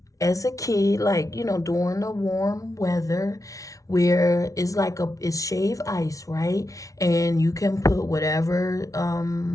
as a kid, like, during the warm weather, where it's shaved ice, right? And you can put whatever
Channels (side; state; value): right; late; 0.17 ms